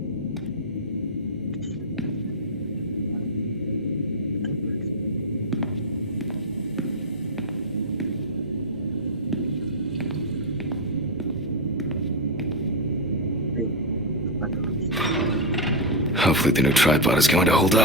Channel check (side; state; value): both; normal; correlation 0.02